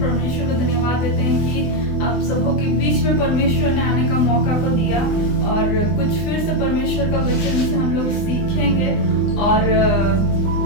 को धन्यवाद देते हैं कि आप सबों के बीच में परमेश्वर ने आने का मौका को दिया और कुछ फिर से परमेश्वर का वचन से हम लोग सीखेंगे और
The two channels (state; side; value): late; right; 20 ms